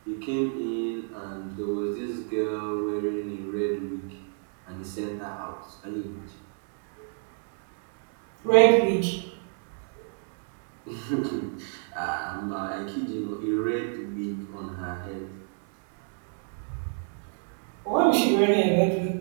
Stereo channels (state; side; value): silent; left; 58 dB below the other